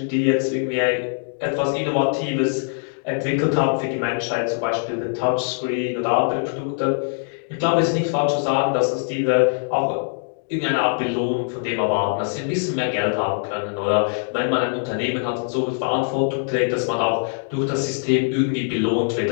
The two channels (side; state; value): right; silent; digital silence